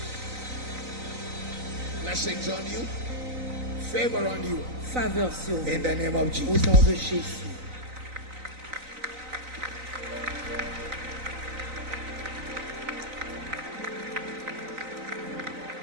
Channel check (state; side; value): late; left; 3.9 ms